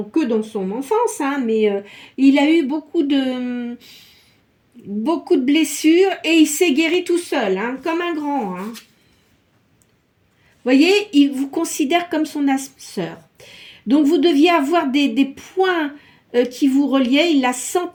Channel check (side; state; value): both; identical; correlation 1.00